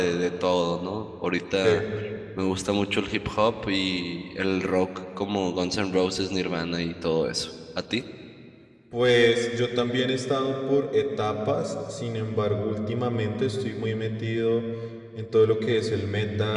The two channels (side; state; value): both; identical; correlation 1.00